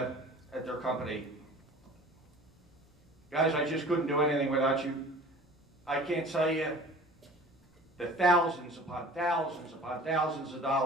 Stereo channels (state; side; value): normal; both; correlation 0.44